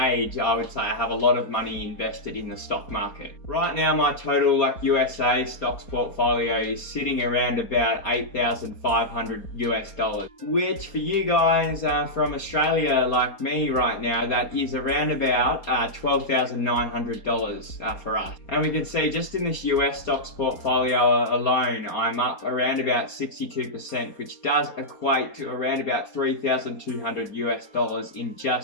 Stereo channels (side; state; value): right; late; 4.3 ms